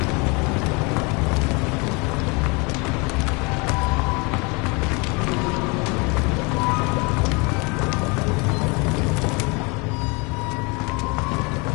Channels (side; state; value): right; quieter; 29.3 dB